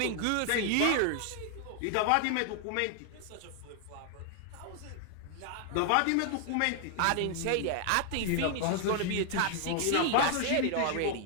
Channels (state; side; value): different; both; correlation 0.00